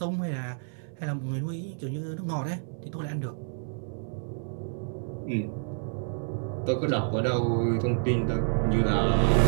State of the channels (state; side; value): silent; left; 59 dB below the other